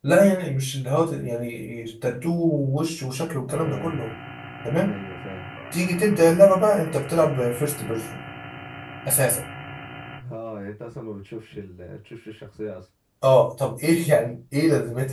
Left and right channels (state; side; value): identical; both; correlation 1.00